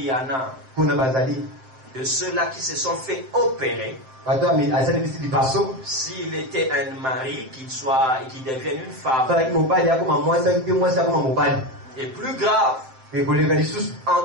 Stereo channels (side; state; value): left; late; 7.7 ms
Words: y en a de ceux-là qui se sont fait opérer. S'il était un mari, qu'il devienne une femme. Et plus grave, en